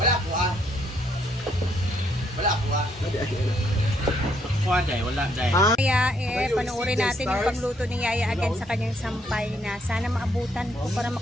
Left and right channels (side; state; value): both; normal; correlation 0.71